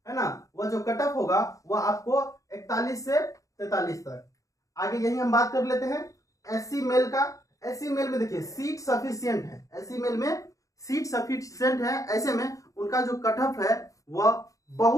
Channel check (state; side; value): late; right; 0.16 ms